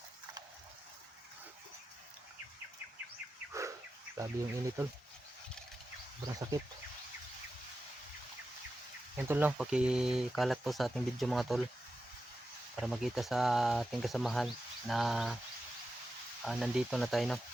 Grabe yung init tol. Sobrang sakit. Yan tol no, pakikalat po sa ating video mga tol. Para makita sa ating kasamahan na nandito na tayo no,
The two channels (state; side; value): normal; both; correlation 0.91